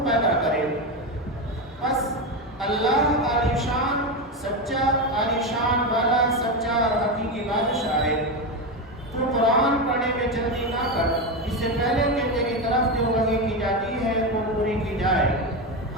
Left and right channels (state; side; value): normal; both; correlation 0.14